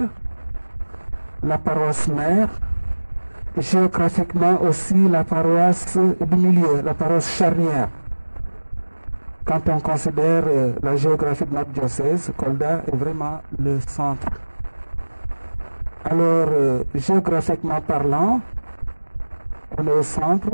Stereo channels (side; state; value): both; inverted; correlation -1.00